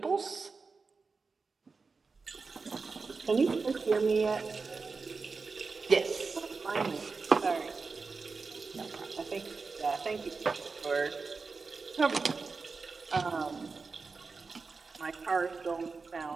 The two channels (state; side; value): quieter; left; 4.5 dB